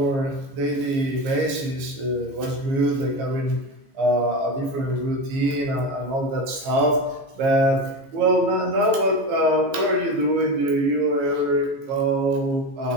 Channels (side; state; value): left; late; 15 ms